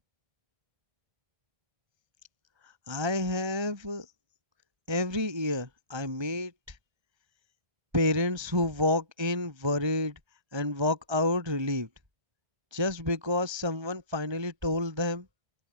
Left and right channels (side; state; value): left; late; 1.3 ms